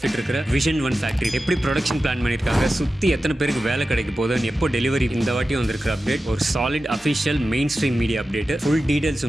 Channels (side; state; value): both; normal; correlation 0.93